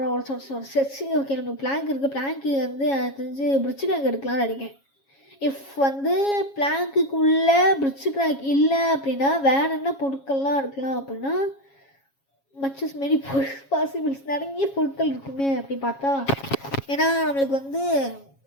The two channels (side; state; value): right; late; 7.3 ms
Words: சரி. ஓகே, நமக்கு பிளாங்க் இருக்குது. பிளாங்க்கு வந்து தெரிஞ்சு பிரிட்ஜு கிராக் எடுக்கலாம்னு நினைக்கிறேன். இஃப் வந்து பிளாங்க்குள்ளே பிரிட்ஜு கிராக் இல்லை அப்படின்னா வேறு என்ன பொருட்கள்லாம் எடுக்கலாம் அப்படின்னா மச்சஸ் மாரி பாசிபிள்ஸ் நிறைய பொருட்கள் இருக்குமே அப்படி பார்த்தா. ஏன்னா நம்மளுக்கு வந்து